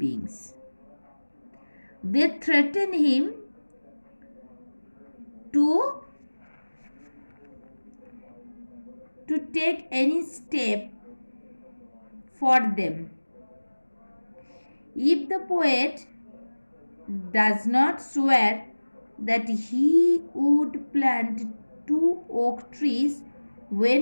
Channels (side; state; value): both; inverted; correlation -1.00